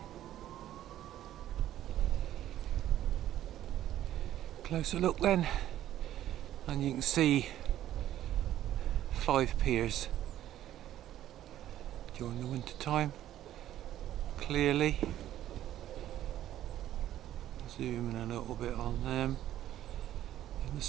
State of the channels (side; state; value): left; quieter; 12.6 dB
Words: Closer look then, and you can see 5 piers during the winter time, clearly. Zoom in a little bit on them. In the